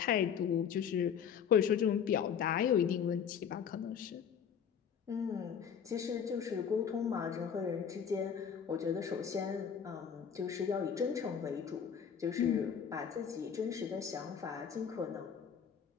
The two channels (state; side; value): quieter; right; 7.6 dB